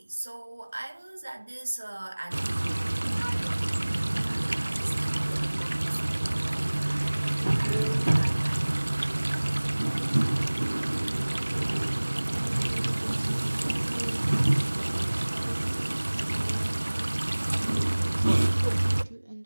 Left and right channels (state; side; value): inverted; both; correlation -1.00